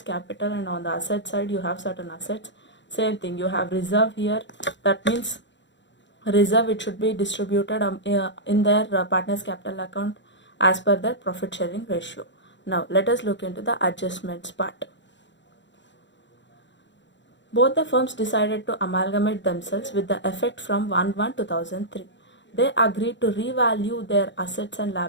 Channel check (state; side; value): late; right; 0.53 ms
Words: capital, and on the asset side you have certain assets. Same thing, you have reserve here. That means reserve, it should be distributed in their partners capital account as per their profit sharing ratio. Now let us look into the adjustments part. Both the firms decided to amalgamate themselves with the effect from 1/1/2003. They agreed to revalue their assets and